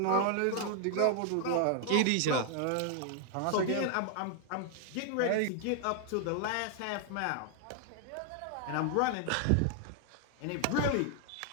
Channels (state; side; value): different; both; correlation 0.00